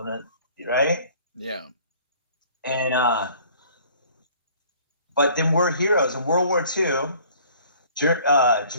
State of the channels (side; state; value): both; inverted; correlation -0.53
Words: right? Yeah. And, but then we're heroes. In World War II,